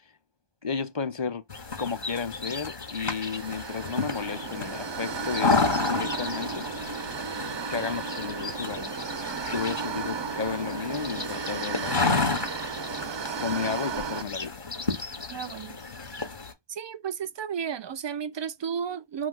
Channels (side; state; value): left; late; 1.2 ms